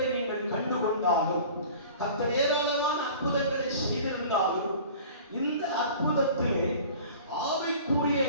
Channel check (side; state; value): both; inverted; correlation -0.43